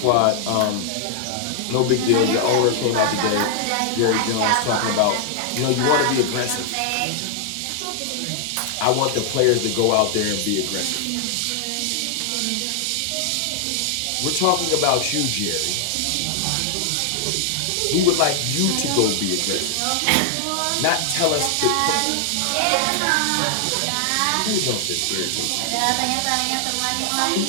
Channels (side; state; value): both; different; correlation 0.00